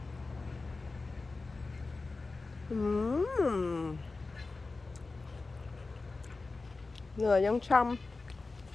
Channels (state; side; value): quieter; right; 3.7 dB